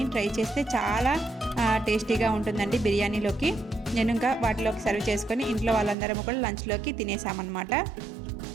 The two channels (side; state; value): left; drops out; at 6.0 s